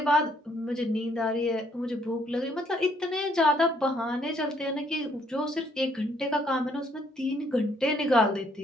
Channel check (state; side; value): normal; both; correlation 0.68